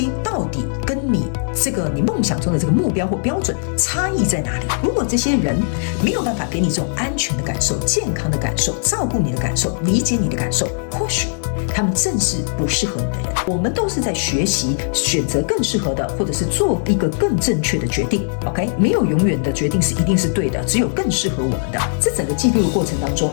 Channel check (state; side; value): silent; right; digital silence